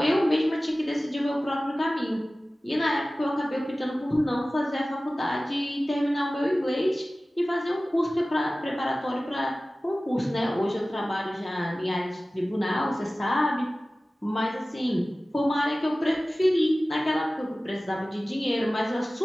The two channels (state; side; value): normal; both; correlation 0.97